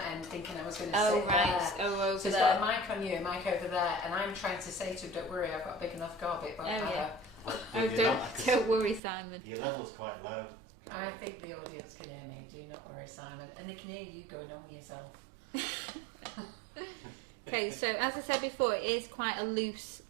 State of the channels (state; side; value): drops out; left; at 9.0 s